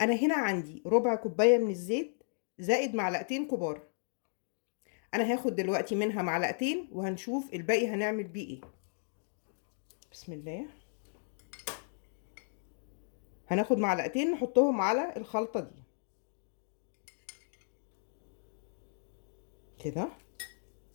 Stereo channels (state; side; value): silent; right; digital silence